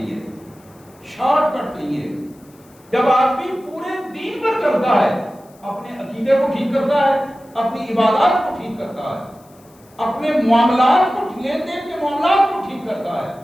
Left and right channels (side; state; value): left; noise; hiss, 29 dB below the sound